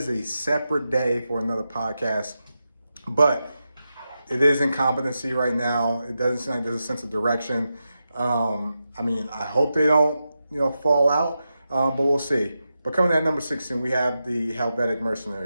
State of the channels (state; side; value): inverted; both; correlation -0.89